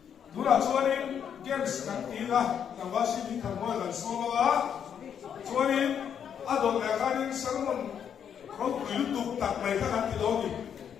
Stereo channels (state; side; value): quieter; right; 8.3 dB